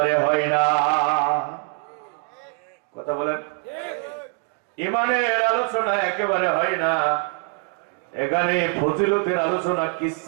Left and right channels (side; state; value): left; quieter; 35.3 dB